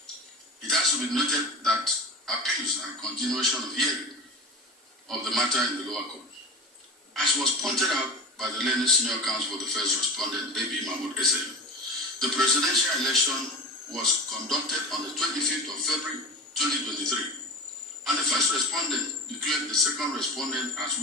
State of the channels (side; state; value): both; normal; correlation 0.31